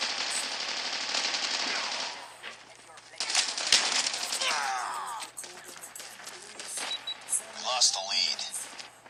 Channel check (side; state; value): both; identical; correlation 1.00